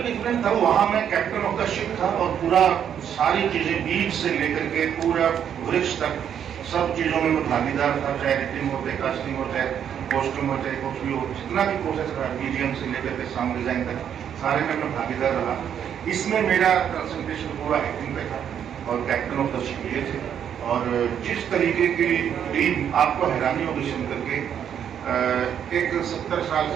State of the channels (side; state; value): left; quieter; 8.9 dB